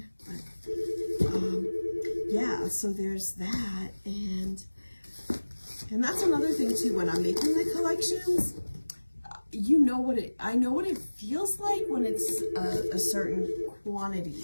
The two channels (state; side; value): inverted; both; correlation -1.00